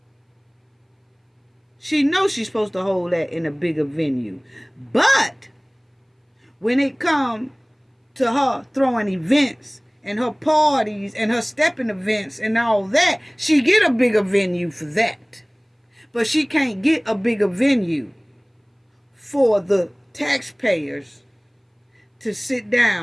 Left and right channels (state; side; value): identical; both; correlation 1.00